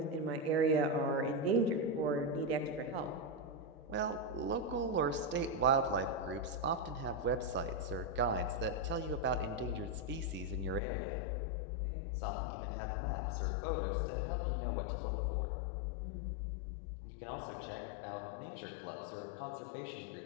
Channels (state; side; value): drops out; right; at 10.8 s